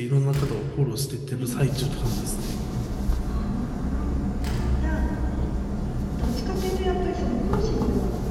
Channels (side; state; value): both; identical; correlation 1.00